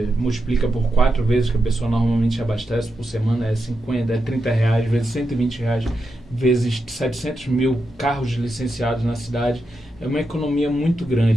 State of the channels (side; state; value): both; normal; correlation 0.87